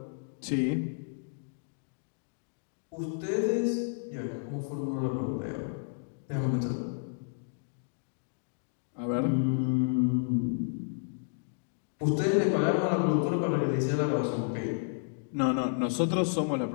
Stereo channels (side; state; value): right; silent; digital silence